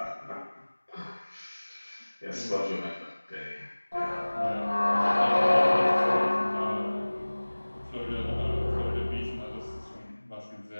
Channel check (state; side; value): inverted; both; correlation -1.00